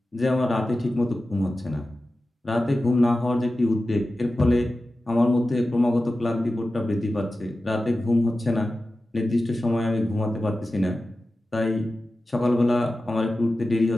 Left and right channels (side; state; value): both; normal; correlation 0.94